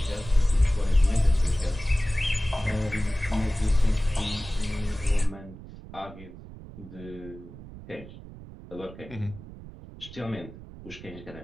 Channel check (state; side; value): noise; right; rumble, 15 dB below the sound